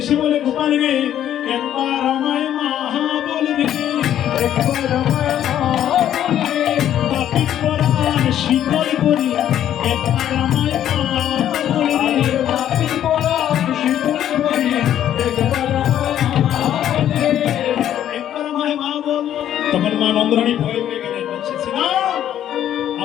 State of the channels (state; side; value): quieter; right; 11.0 dB